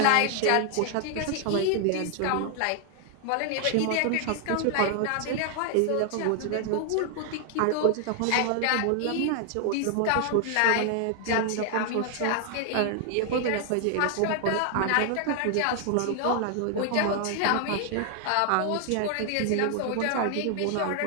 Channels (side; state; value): both; different; correlation 0.00